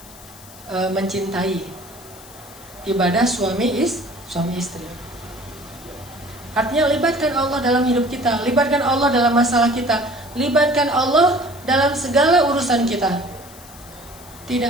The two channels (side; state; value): left; noise; hiss, 20 dB below the sound